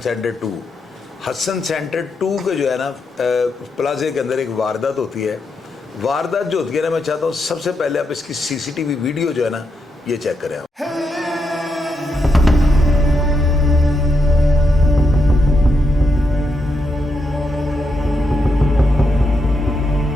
2। हसन सेंटर 2 के जो है ना प्लाजे के अंदर एक वारदात होती है। वारदात जो होती है ना मैं चाहता हूँ सबसे पहले आप इसकी CCTV वीडियो जो है ना ये चेक करें आप।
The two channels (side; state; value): both; normal; correlation 0.82